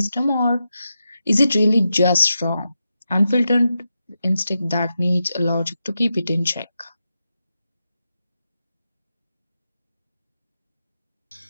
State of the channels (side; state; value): both; inverted; correlation -0.88